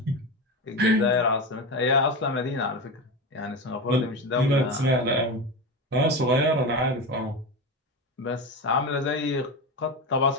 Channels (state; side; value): normal; both; correlation 0.20